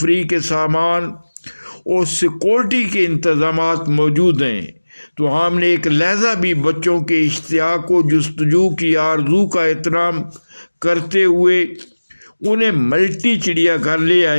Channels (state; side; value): inverted; both; correlation -1.00